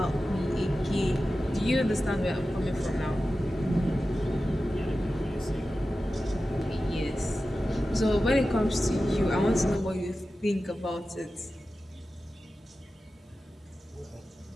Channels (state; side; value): normal; both; correlation 0.94